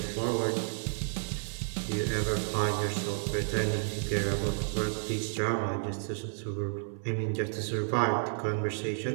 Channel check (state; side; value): silent; left; 57 dB below the other